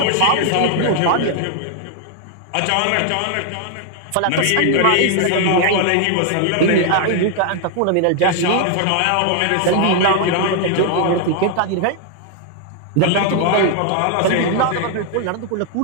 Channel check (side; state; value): both; different; correlation 0.00